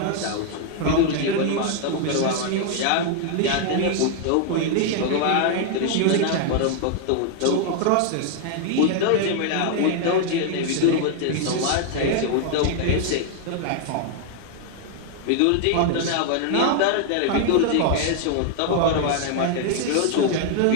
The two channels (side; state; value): both; different; correlation 0.00